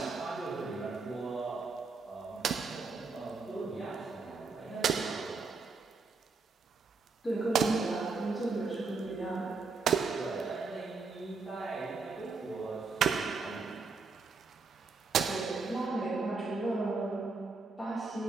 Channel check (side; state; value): left; quieter; 4.3 dB